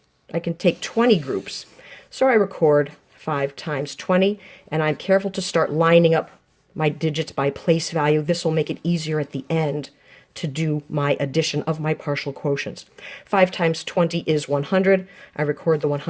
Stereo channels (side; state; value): both; identical; correlation 1.00